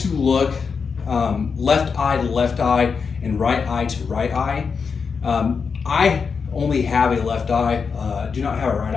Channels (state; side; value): quieter; right; 5.6 dB